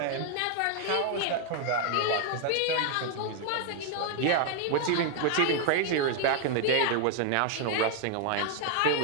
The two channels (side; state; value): both; different; correlation 0.00